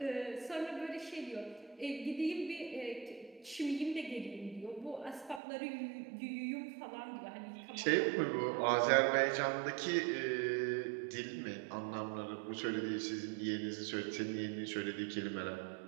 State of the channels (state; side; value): drops out; left; at 5.4 s